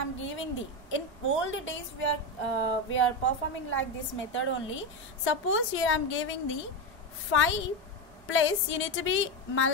am giving the, in old days we are performing like this method only. Suppose here I am giving the 5 plus, you need to be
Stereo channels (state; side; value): normal; both; correlation 0.13